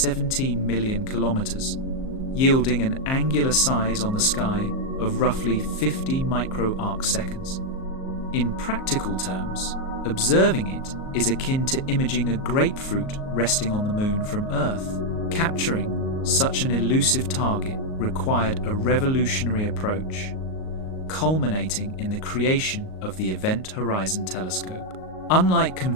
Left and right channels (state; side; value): late; right; 38 ms